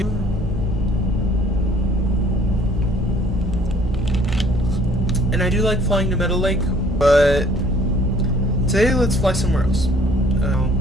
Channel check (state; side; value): normal; both; correlation 0.57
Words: And I do like flying to Meadow Lake, but today let's fly somewhere else.